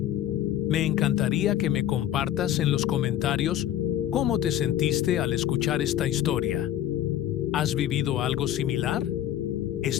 Me encantaría que me compartas en los comentarios cómo te sentiste al escuchar esta historia. ¿Has vivido algo similar?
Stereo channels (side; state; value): right; quieter; 11.9 dB